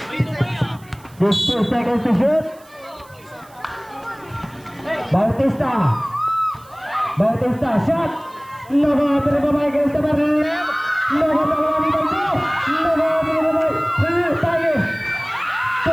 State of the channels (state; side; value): noise; right; hiss, 27 dB below the sound